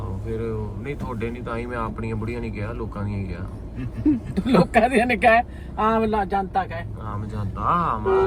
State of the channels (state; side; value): identical; both; correlation 1.00